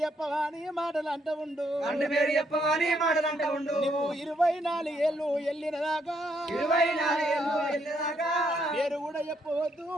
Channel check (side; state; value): both; normal; correlation 0.73